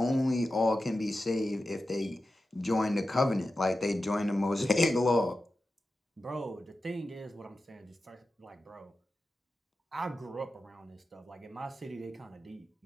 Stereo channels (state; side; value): normal; both; correlation 0.92